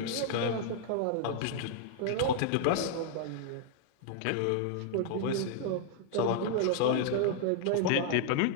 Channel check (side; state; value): both; different; correlation -0.01